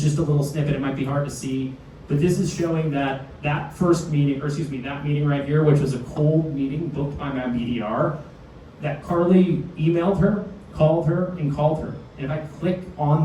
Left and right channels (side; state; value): both; identical; correlation 1.00